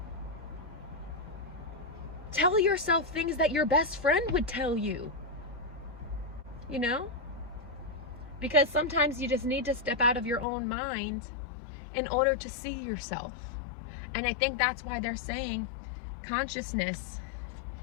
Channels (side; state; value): right; drops out; at 10.5 s